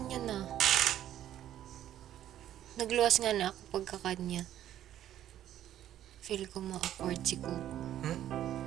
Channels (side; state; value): left; quieter; 11.8 dB